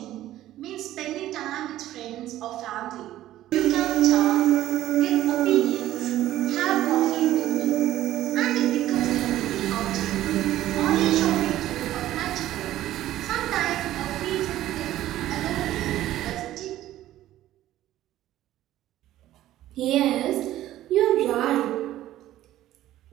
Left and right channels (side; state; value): left; quieter; 14.0 dB